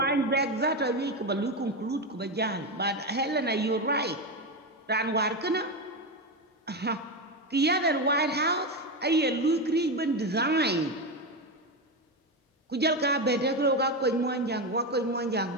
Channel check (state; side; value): normal; both; correlation 0.14